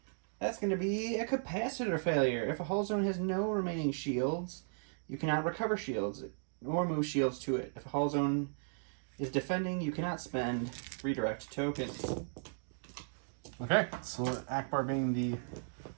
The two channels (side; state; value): left; silent; digital silence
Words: That's going to be a capacitor failure. If a hull zone has no remaining shields, you cannot recover shields or move shields to it. If a hull zone is defending, you cannot spend redirect tokens. Okay, so Ackbar being the